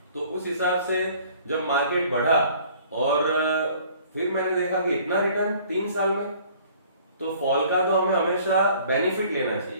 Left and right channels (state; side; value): inverted; both; correlation -0.54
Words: तो उस हिसाब से जब मार्केट बढ़ा और फिर मैंने देखा कि इतना रिटर्न 3 साल में, तो फॉल का तो हमें हमेशा बेनिफिट लेना